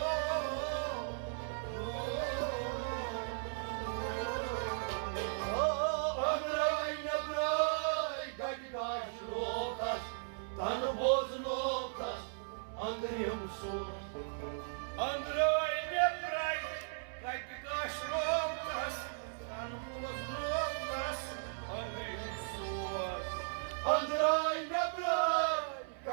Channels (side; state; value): left; silent; 53 dB below the other